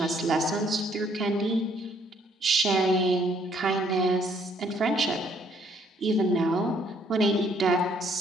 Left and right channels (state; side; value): normal; both; correlation 0.66